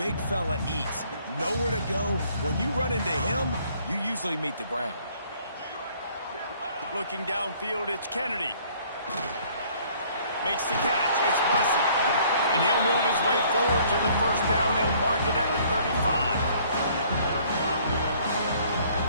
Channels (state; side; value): inverted; both; correlation -0.59